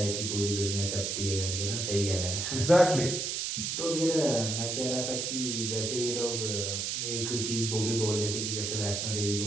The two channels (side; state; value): right; noise; hiss, 2 dB below the sound